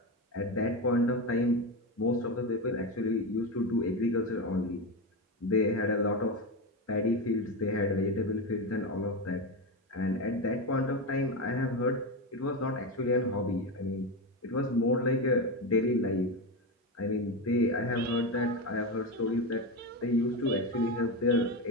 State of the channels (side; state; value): both; normal; correlation 0.15